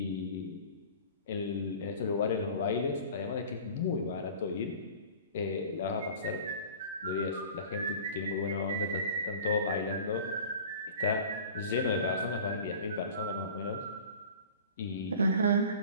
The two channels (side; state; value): both; inverted; correlation -0.41